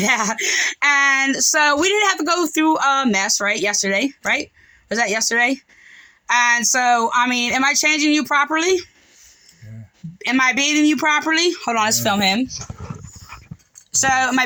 that. And so we didn't have to go through a mess, right? Yesterday, right? Was that yesterday? And so, I mean, am I changing you properly? Yeah. Am I bathing you properly? Hold on, let's film him. So, am I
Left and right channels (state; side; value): identical; both; correlation 1.00